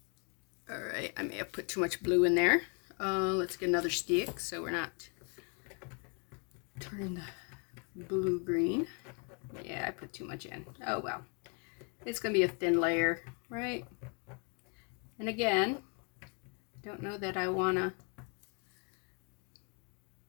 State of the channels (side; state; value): right; quieter; 35.4 dB